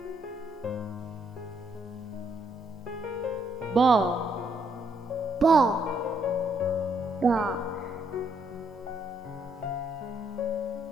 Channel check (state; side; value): normal; both; correlation 0.73